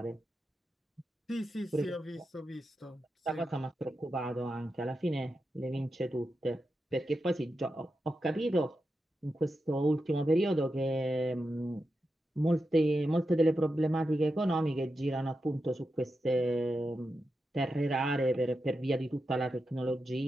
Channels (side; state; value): both; normal; correlation 0.89